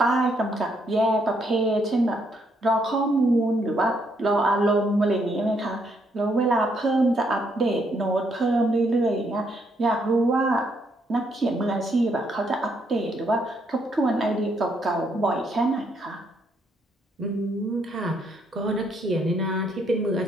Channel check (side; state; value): both; normal; correlation 0.73